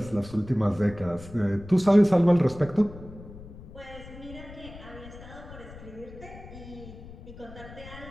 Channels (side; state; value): left; noise; rumble, 16 dB below the sound